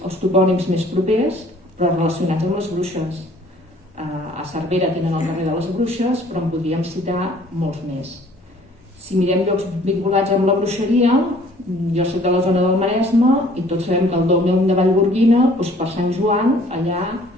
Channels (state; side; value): normal; both; correlation 0.56